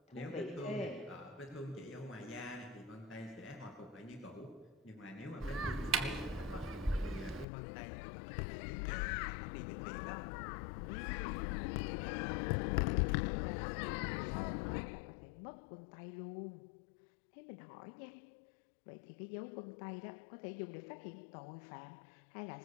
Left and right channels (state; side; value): drops out; right; at 7.5 s